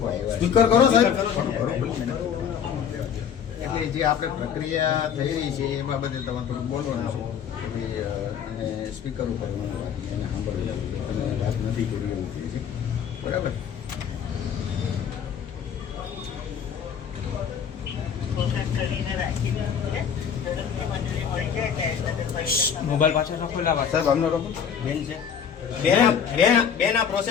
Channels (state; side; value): quieter; right; 7.8 dB